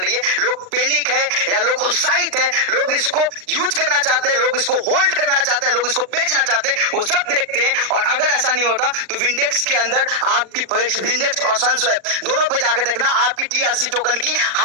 है। लोग पैनिक है या लोग उत्साहित है, लोग इसको यूज करना चाहते हैं, लोग इसको होल्ड करना चाहते हैं, लोग इसको बेचना चाहते हैं, वो सब देखते हैं। और अगर ऐसा नहीं होता तो विंडेक्स के अंदर आपकी विंडेक्स और सनस्वैप दोनों पे जाके देखना आपकी टीआरसी टोकन की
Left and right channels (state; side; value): late; left; 39 ms